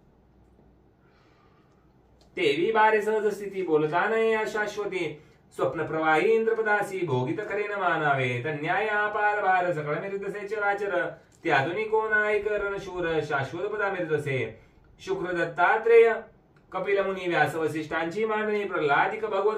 तेवी बारे सहज स्थिती, बोलता नये अशाश्वती, स्वप्न प्रवाही इंद्रपदासी, भोगित करेन मानावे, तन्याय अपार भार, सकळ मिरतसे चराचर, त्यातून कोण ऐकरण शूर, शाश्वत पदा मिरतसे, शुक्र दत्तात्रेय कपिल मुनी व्यास वसिष्ठांची मांडणी, प्रल्हादिक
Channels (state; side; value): identical; both; correlation 1.00